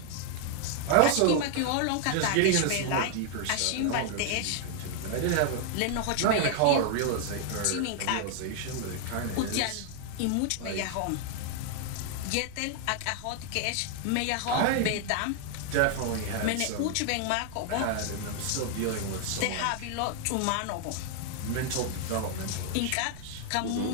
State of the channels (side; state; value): both; different; correlation 0.00